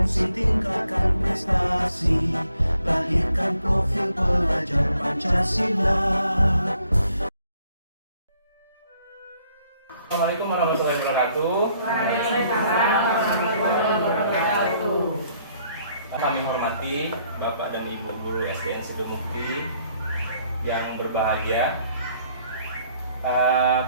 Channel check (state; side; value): inverted; both; correlation -0.67